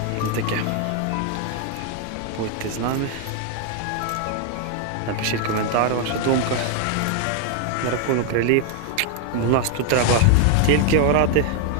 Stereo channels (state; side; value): different; both; correlation 0.00